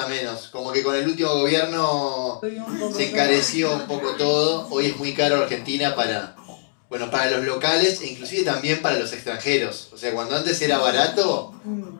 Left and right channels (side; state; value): right; silent; digital silence